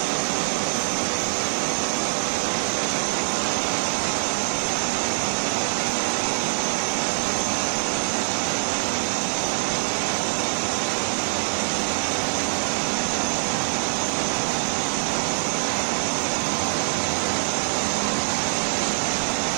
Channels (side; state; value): left; silent; digital silence